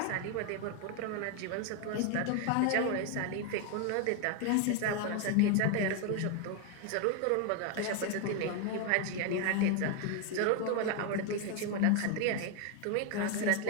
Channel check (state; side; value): different; both; correlation 0.01